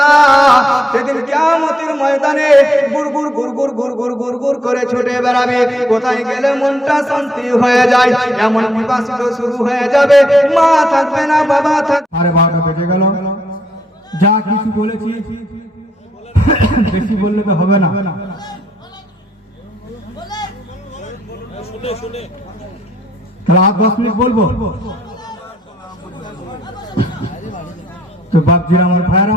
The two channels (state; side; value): normal; both; correlation 0.74